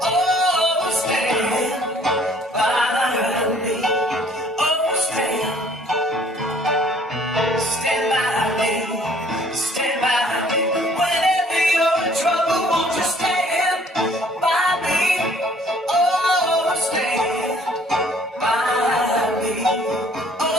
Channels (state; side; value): normal; both; correlation 0.57